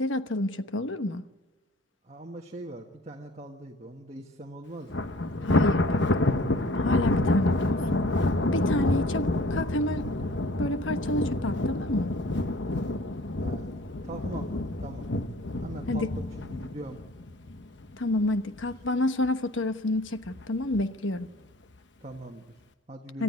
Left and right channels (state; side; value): normal; both; correlation 0.50